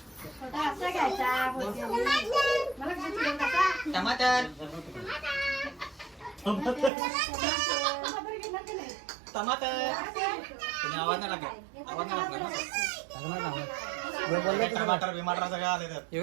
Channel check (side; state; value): left; drops out; at 6.9 s